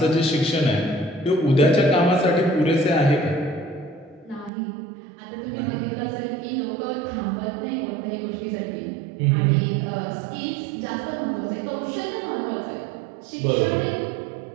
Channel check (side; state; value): left; drops out; at 4.5 s